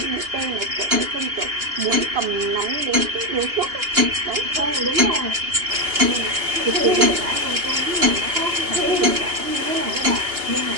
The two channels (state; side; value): late; left; 2.9 ms